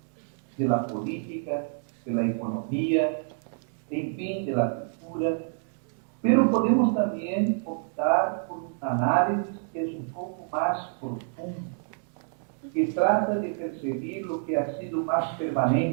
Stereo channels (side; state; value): left; silent; 59 dB below the other